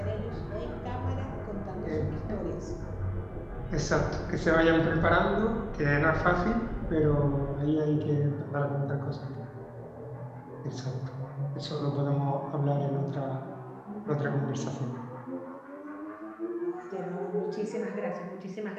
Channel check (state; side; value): identical; both; correlation 1.00